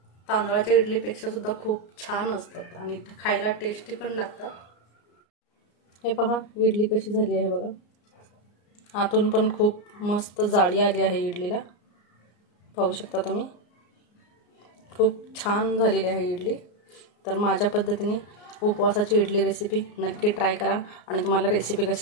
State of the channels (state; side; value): late; right; 34 ms